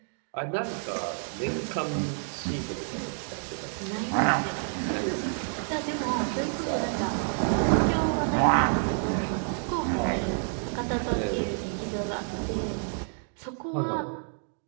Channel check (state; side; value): silent; left; 59 dB below the other